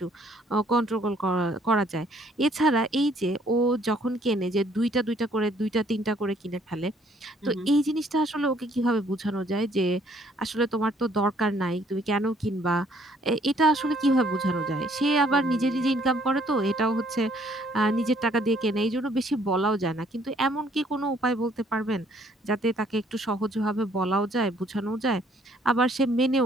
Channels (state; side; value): normal; both; correlation 0.63